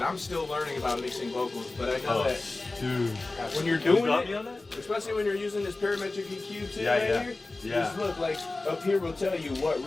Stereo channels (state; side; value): quieter; right; 3.2 dB